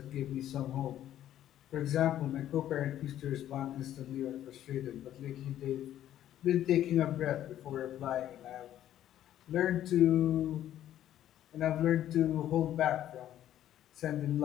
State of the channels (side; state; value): right; quieter; 11.9 dB